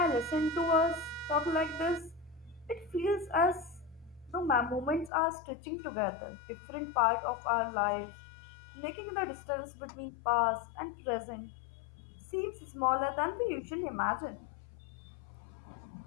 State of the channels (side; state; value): right; drops out; at 5.1 s